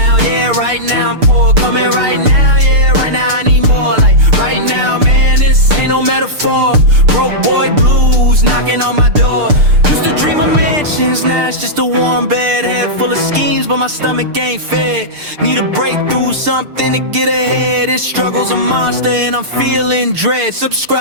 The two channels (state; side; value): late; left; 6.7 ms